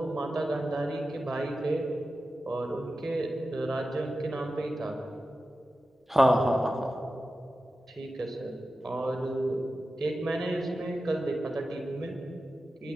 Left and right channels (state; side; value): normal; both; correlation 0.93